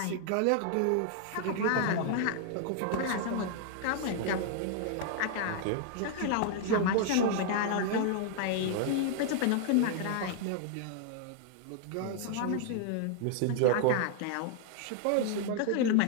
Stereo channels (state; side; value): different; both; correlation 0.00